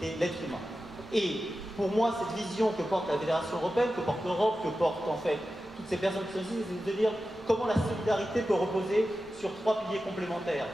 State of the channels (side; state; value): both; normal; correlation 0.93